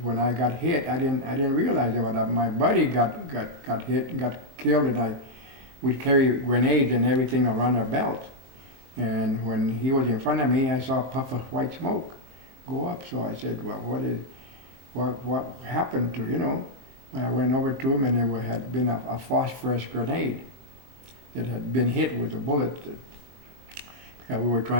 when I got hit. I didn't realize that my buddy got hit and got killed, and we'd carry grenades and everything around our belt. And when he was in front of me, I saw a puff of white smoke go up. So I said, "Well, what happened to you know?" I went over to him, and there had been a phosphorus grenade that had been hit with a bullet, because we were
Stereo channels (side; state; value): left; late; 23 ms